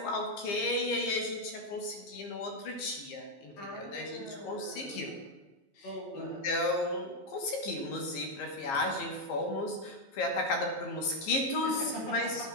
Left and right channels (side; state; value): right; late; 15 ms